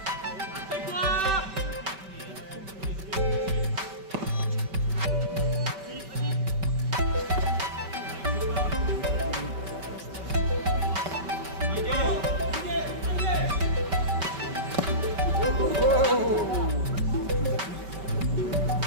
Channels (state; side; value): late; left; 5.2 ms